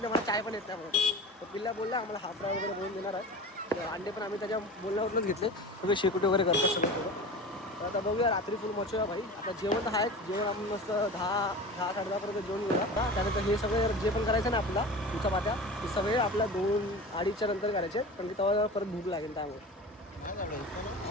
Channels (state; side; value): normal; both; correlation 0.33